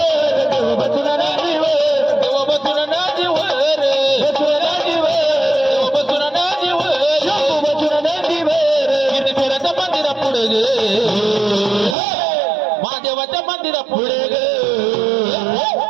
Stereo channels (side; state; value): left; drops out; at 12.0 s